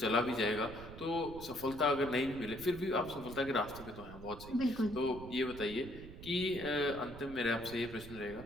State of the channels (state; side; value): noise; right; rumble, 13 dB below the sound